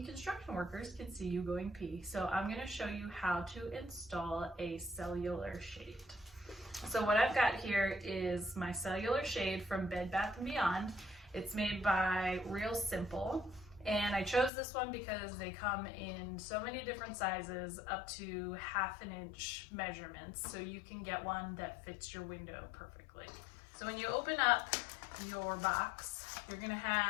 construction workers can see you going pee. So I'm going to show you how to install a cellular shade. So what I've got here is my cellular shade from Bed Bath & Beyond. It's made by Real Simple, and I chose this one because they come in so many different sizes up to 1/2 inch measurements, so you can get one that fits your window perfectly. So when you open up your box, you're gonna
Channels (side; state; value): right; drops out; at 14.5 s